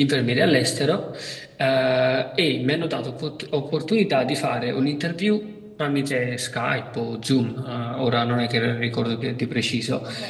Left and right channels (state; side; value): identical; both; correlation 1.00